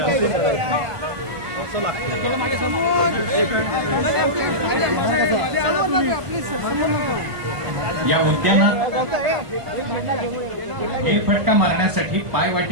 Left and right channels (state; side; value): late; left; 1.5 ms